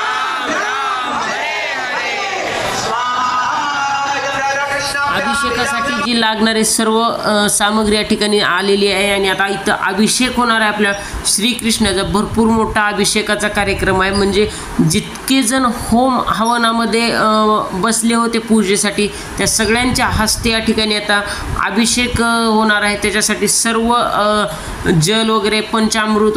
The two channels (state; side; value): identical; both; correlation 1.00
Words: राम हरे हरे स्वाहा. इदं राधा कृष्णाभ्याम् अभिषेकासाठी जी लागणारी सर्व सामग्री या ठिकाणी आलेली आहे. आणि आता इथं अभिषेक होणार आहे आपल्या श्रीकृष्णाचा. भरपूर मोठा अभिषेकाचा कार्यक्रम आहे. म्हणजे जितके जण होम हवनामध्ये बसले होते पूजेसाठी, त्या सगळ्यांच्या हस्ते या ठिकाणी आता अभिषेक होणार आहे. त्याच्यासाठी सर्व जल वगैरे पंचामृत